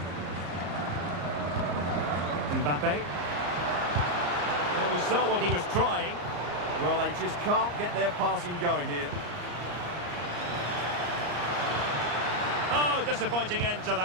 Mbappe. Well, we saw what he was trying. Well, they just can't get their passing going here. Oh, disappointing end to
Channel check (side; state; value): left; late; 34 ms